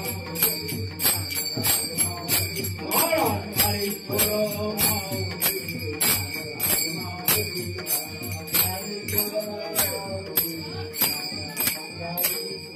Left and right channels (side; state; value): both; identical; correlation 1.00